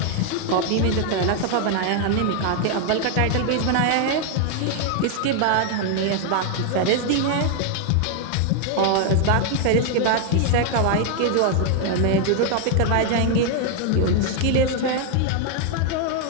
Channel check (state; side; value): different; both; correlation 0.00